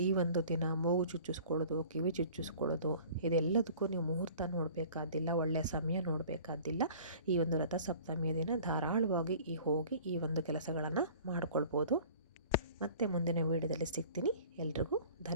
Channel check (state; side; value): inverted; both; correlation -0.47